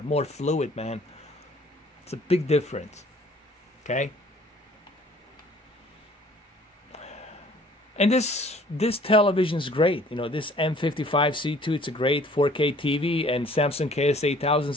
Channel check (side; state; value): both; normal; correlation 0.55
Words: more fluid, man. It's a big difference. Okay? And this television is great. You know, this M55-C2, it's a great 4K TV, and Samsung Ks-8000